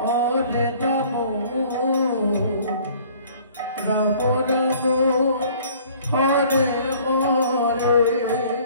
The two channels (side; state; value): both; inverted; correlation -0.54